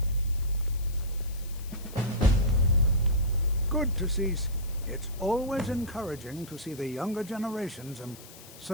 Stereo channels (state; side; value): noise; left; hiss, 18 dB below the sound